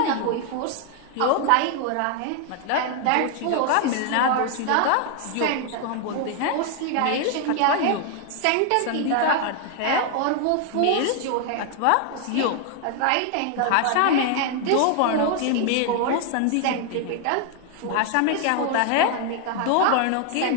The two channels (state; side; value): different; both; correlation 0.00